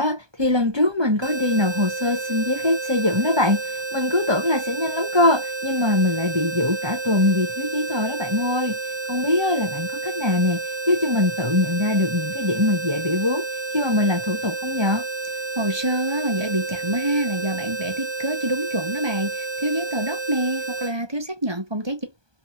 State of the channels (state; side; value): late; left; 1.2 ms